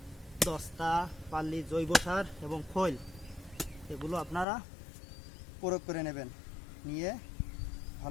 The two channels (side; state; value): right; drops out; at 4.5 s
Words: দস্তা, পাল্লি, জৈব সার এবং খৈল এগুলো আপনারা প্রয়োগ করে নেবেন। নিয়ে